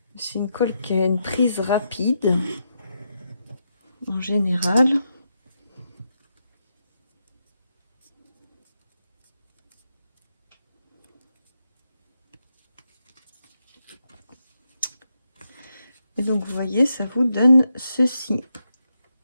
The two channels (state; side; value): inverted; both; correlation -0.83